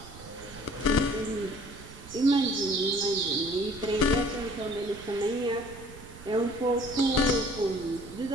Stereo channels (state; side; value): noise; right; rumble, 17 dB below the sound